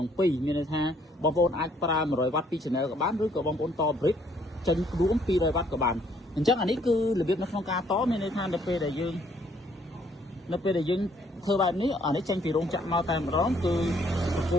ឹង 2 មានន័យថាបងប្អូនអាចប្រើ100 វ៉ាត់ពី channel ក៏បានឬក៏បងប្អូនត brick ចេញរួម200 វ៉ាត់ក៏បានអញ្ចឹងអានេះគឺរបៀបនៅក្នុងការតមានន័យថានៅពេលដែលយើងធ្វើបែបនេះអានេះចេញពីរោងចក្រមកតែម្ដងគឺបកគោ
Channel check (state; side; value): normal; both; correlation 0.65